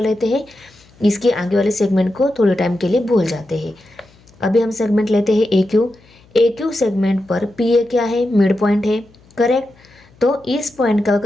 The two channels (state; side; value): noise; left; hum, 29 dB below the sound